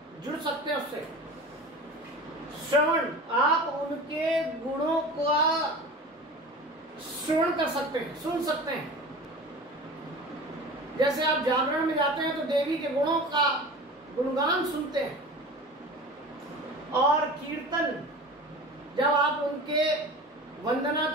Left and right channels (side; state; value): both; normal; correlation 0.36